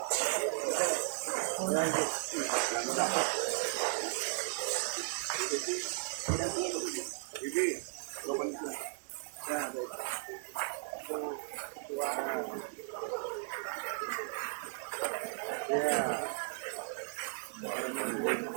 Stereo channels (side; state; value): left; silent; digital silence